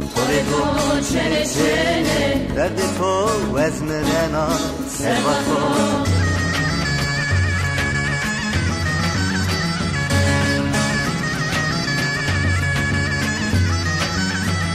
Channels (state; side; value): identical; both; correlation 1.00